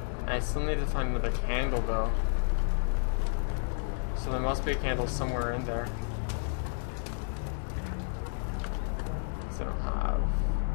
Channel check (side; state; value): right; silent; digital silence